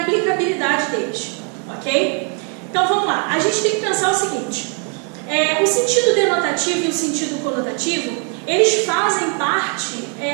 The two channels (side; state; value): left; quieter; 38.5 dB